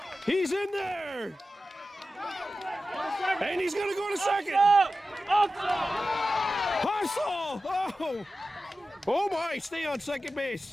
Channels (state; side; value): normal; both; correlation 0.94